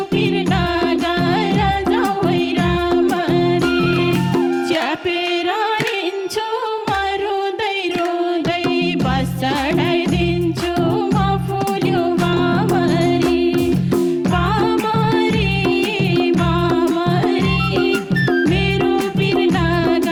पिर्ना गर जाउै रामरी च्यापेर हिँड्छु म रुँदै रुँदै बस चढाइदिन्छु म फुल्यो बामरी बामरी बामरी मेरो पिर्ना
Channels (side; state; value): both; identical; correlation 1.00